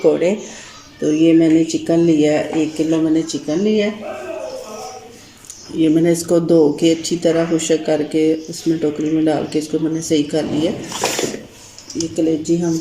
तो ये मैंने चिकन लिया है, 1 किलो मैंने चिकन लिया है। ये मैंने इसको धो के अच्छी तरह खुशक करके उसमें टोकरी में डाल के इसको मैंने सही कर लिया। ये कलेजी हम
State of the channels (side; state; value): both; identical; correlation 1.00